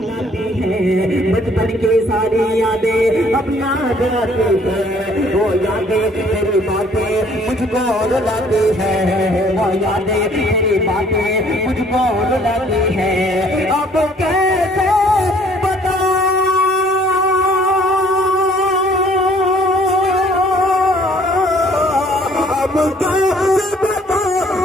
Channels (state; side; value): normal; both; correlation 0.59